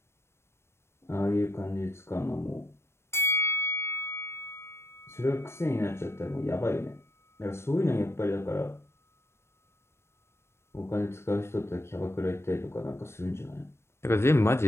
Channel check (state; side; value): late; right; 0.12 ms